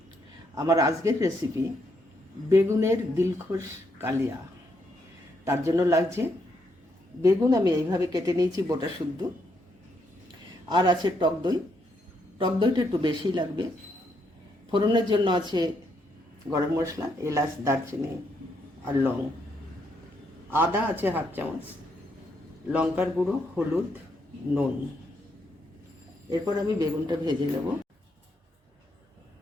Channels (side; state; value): both; normal; correlation 0.76